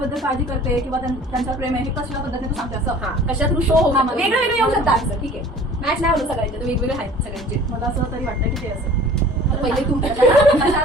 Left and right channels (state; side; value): normal; both; correlation 0.46